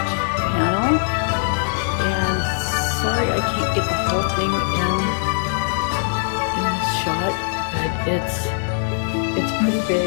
panel, and sorry I can't get the whole thing in this shot, but it's pretty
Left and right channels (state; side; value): silent; right; digital silence